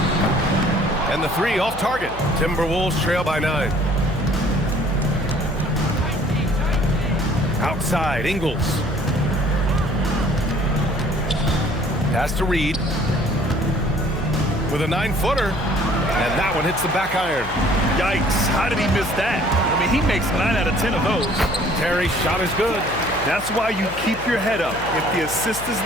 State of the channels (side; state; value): left; noise; hum, 15 dB below the sound